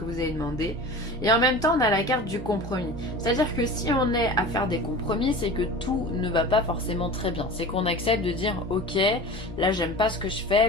vous avez demandé. Et en même temps on a la carte du compromis. C'est-à-dire que si on est à faire des compromis, c'est que tout ne va pas forcément très bien. C'est qu'on accepte de dire ok, là j'aime pas ce que je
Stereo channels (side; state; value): both; normal; correlation 0.35